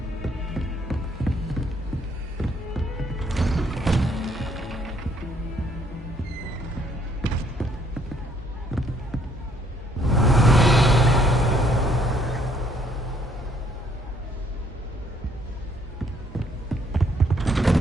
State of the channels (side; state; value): both; normal; correlation 0.66